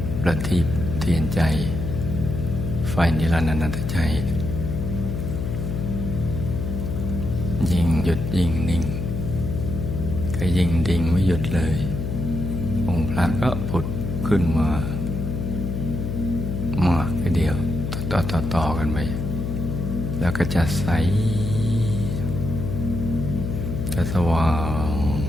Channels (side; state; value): left; noise; hum, 3 dB below the sound